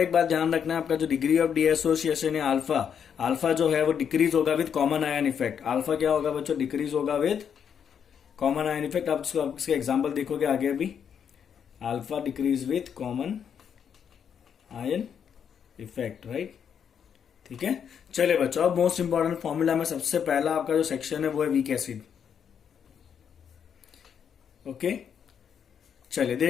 बात ध्यान रखना है, आपका जो डिग्री ऑफ डीएसोसिएशन है अल्फा, अल्फा जो है वो डिक्रीज होगा with common ion effect. Alpha क्या होगा बच्चों? डिक्रीज होगा विद कॉमन आयन इफेक्ट। आप इसके एग्जांपल देखोगे आगे अभी। Alpha decrease with common ion effect, right, ठीक है। चलिए बच्चों, अब मोस्ट इंपॉर्टेंट फॉर्मूला में सबसे पहला आपका जो सेक्शन है वो है वीक एसिड। ओके, चलिए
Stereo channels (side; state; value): right; quieter; 7.8 dB